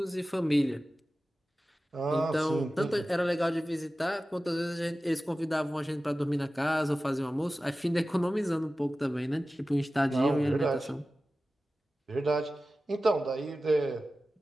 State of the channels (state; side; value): normal; both; correlation 0.95